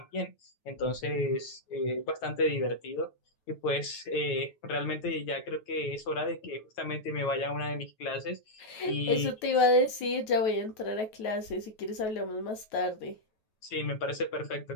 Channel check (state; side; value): late; right; 9.2 ms